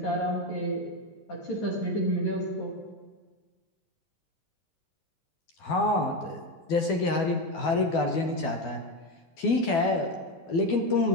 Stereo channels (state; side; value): late; right; 12 ms